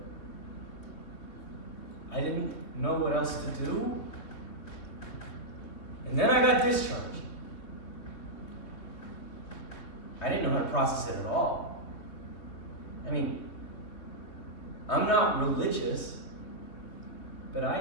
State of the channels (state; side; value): late; right; 3.3 ms